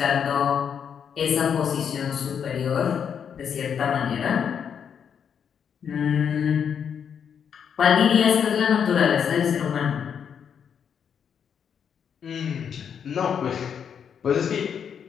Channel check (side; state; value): right; quieter; 7.6 dB